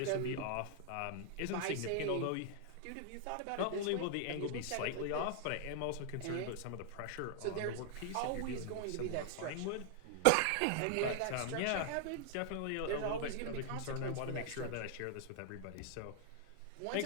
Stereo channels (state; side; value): different; both; correlation 0.00